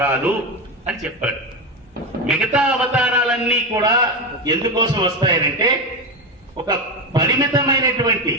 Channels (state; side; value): normal; both; correlation 0.15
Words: అని చెప్పాడు. మిగతా అవతారాలన్నీ కూడా ఎందుకోసం వస్తాయనంటే ఒక పరిమితమైనటువంటి